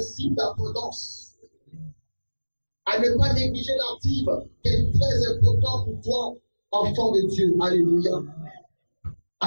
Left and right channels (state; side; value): inverted; both; correlation -1.00